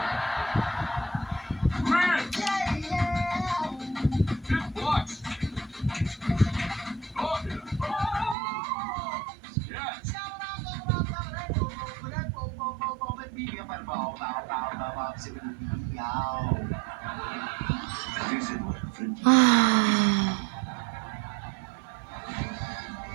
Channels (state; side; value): drops out; left; at 8.3 s